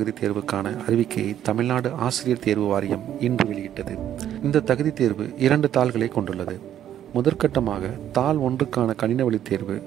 தேர்வுக்கான அறிவிக்கையை தமிழ்நாடு ஆசிரியர் தேர்வு வாரியம் இன்று வெளியிட்டது. இந்த தகுதி தேர்வு 2 தாள்களை கொண்டுள்ளது. முதற்கட்டமாக தாள் 1க்கான கணின வழி தேர்வு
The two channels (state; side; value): quieter; left; 10.8 dB